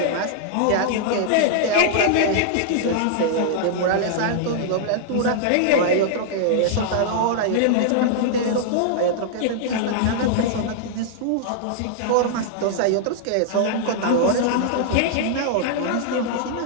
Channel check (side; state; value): both; different; correlation -0.01